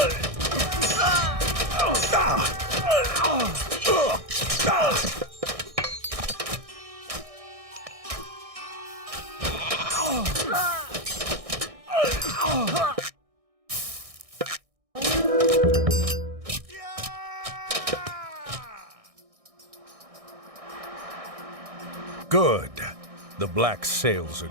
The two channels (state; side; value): late; left; 1.6 ms